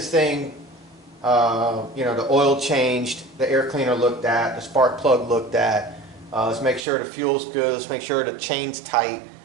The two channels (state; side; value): drops out; left; at 6.9 s